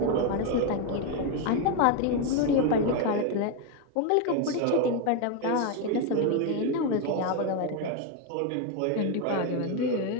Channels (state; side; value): different; both; correlation 0.02